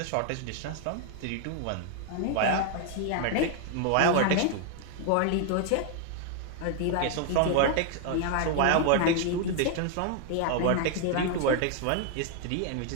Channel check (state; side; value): different; both; correlation 0.00